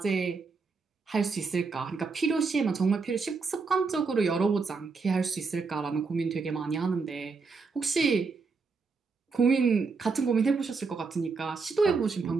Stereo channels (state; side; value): quieter; left; 4.6 dB